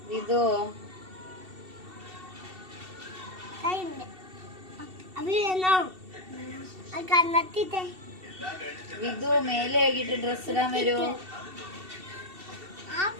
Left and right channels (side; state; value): left; late; 2.7 ms